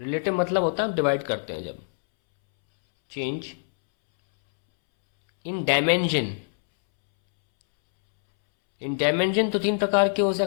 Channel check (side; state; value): right; silent; 62 dB below the other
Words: मतलब होता है हम डिवाइड करते हैं जब, change in dimension. In dimension तो तीन प्रकार के हो